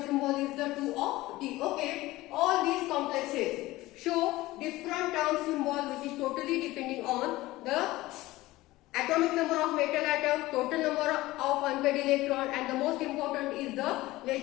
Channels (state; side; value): quieter; right; 18.3 dB